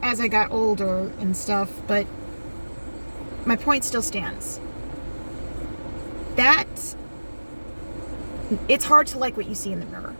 as I got older and stuff, but my point still stands. It's hard to like what you see in the mirror.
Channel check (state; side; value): inverted; both; correlation -1.00